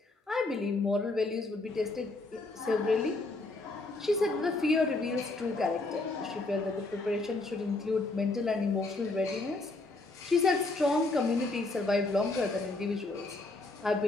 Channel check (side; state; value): right; quieter; 3.1 dB